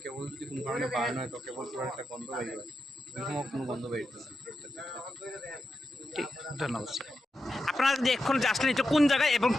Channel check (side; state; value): both; normal; correlation 0.88